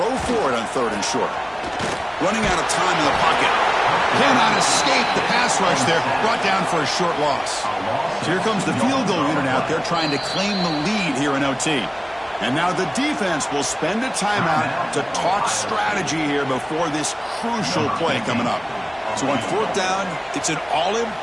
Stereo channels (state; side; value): identical; both; correlation 1.00